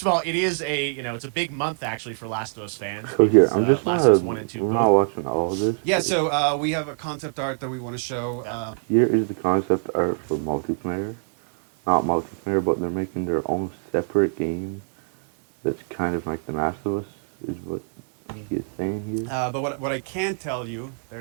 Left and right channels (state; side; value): silent; left; 61 dB below the other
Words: of all, it is it's a big month actually for Last of Us fans. So here, because, I'm just Last not, of Us 1 and 2 we're both. not watching all of this. Yeah, so we have a concept art that we want to show. Here is the concept art for multiplayer. Not multiplayer, but they're making their own separate game that's kind of like The Last of Us, is what he is saying here. But what I can tell you